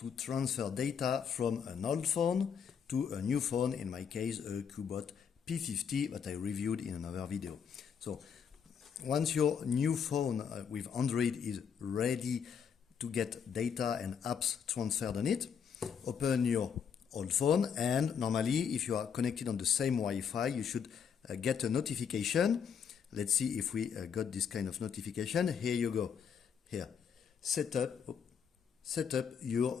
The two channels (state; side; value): quieter; right; 7.2 dB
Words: transfer data from an old phone to a new phone, in my case a CUBOT P50 that I reviewed in another video. So once your new phone with Android is ready to get data and apps transferred on it, open your old phone, and normally if you are connected on the same Wi-Fi you should get a notification. Let's see if we got this kind of notification. Here you go. Here, set up